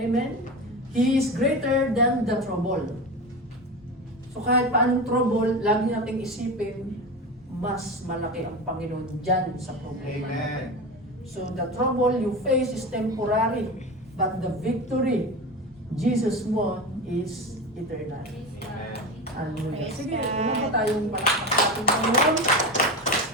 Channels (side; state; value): both; normal; correlation 0.24